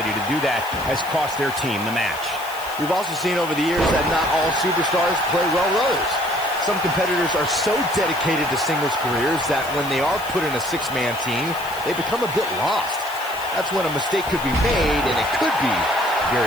to do that has cost their team the match. We've also seen over the years that not all superstars play well with others. Some competitors are so dedicated to singles careers that when they are put in a six-man team, they become a bit lost. That's when a mistake could be made, and it could be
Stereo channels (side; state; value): right; noise; hiss, 15 dB below the sound